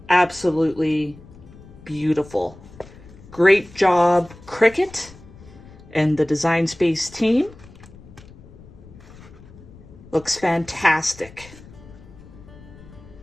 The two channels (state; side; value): noise; left; rumble, 20 dB below the sound